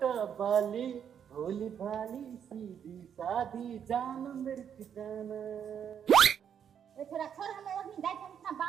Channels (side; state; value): left; quieter; 8.3 dB